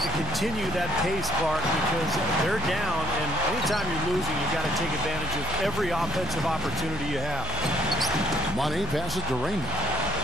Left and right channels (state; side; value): noise; left; hum, 11 dB below the sound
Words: to continue that pace, Clark, because they're down, and anytime you're losing, you've got to take advantage of every offensive opportunity you have. Money passes to Raymond.